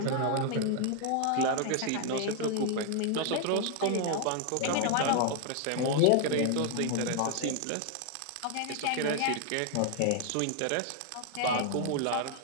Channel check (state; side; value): different; both; correlation 0.00